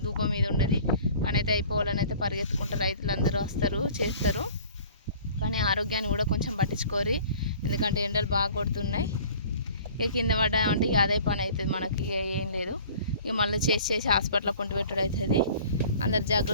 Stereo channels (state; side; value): inverted; both; correlation -0.48